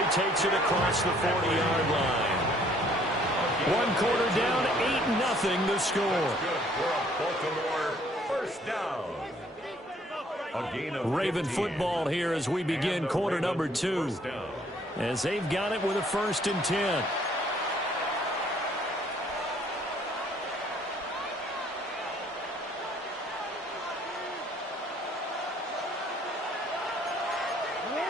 takes it across the 40-yard line. 1 quarter down, 8-0 the score. Good for a Baltimore first down. A gain of Raven 15. football here as we begin quarter number 2. As they've got it with a 1st and 10.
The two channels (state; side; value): normal; both; correlation 0.61